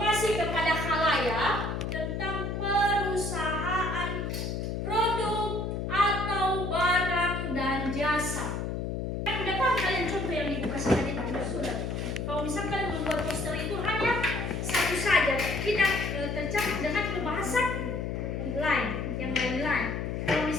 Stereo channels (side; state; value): left; noise; hum, 3 dB below the sound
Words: kepada khalayak tentang perusahaan, produk atau barang dan jasa. Yang dapat kalian contoh yang Ibu kasih tadi pada surat. Kalau misalkan membuat poster itu hanya satu saja, tidak tercakup dengan pembahasan lain, yang lain-lain. Kalau